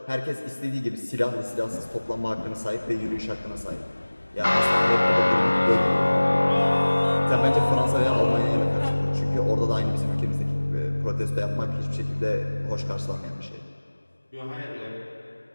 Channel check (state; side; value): inverted; both; correlation -1.00